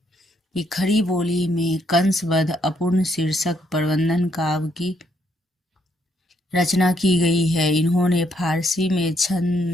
कि खड़ी बोली में कंसबद्ध अपूर्ण शीर्षक प्रबंधन काव्य की रचना की गई है। इन्होंने फारसी में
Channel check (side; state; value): both; normal; correlation 0.73